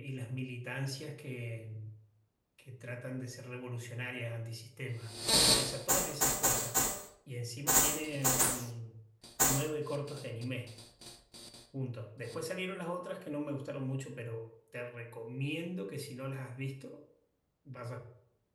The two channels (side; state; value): both; identical; correlation 1.00